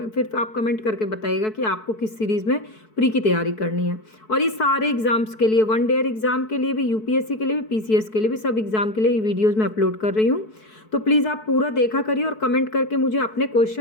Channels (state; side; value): late; right; 4.6 ms